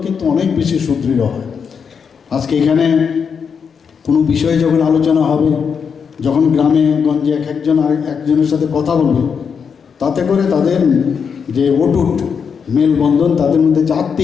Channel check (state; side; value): quieter; right; 6.4 dB